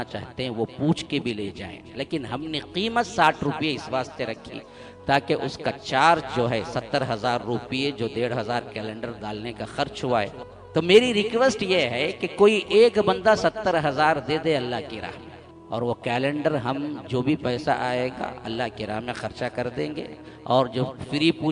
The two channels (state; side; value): identical; both; correlation 1.00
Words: چاہتے ہیں وہ پوچھ کے بھی لے جائیں، لیکن ہم نے قیمت 60 روپے اس واسطے رکھی تاکہ اس کا چارج جو ہے 70,000 روپے جو 1,500 کیلنڈر ڈالنے کا خرچ ہوا ہے۔ تو میری ریکویسٹ یہ ہے کہ کوئی ایک بندہ 70,000 دے دے اللہ کی راہ میں، اور وہ کیلنڈر ہم جو بھی پیسہ آئے گا اللہ کی راہ میں خرچہ کر دیں گے، اور جو فری